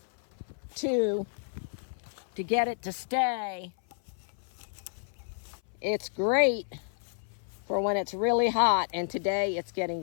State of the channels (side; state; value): right; silent; 56 dB below the other